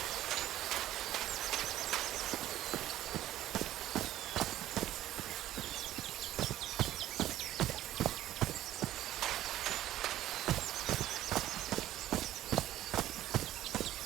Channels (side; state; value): left; quieter; 13.6 dB